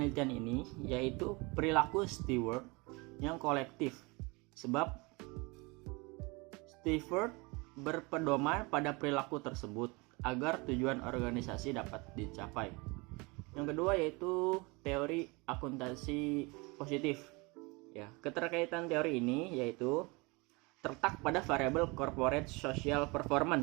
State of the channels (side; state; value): left; quieter; 26.7 dB